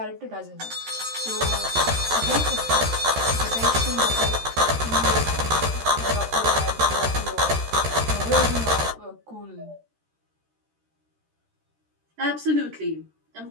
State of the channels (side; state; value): left; late; 13 ms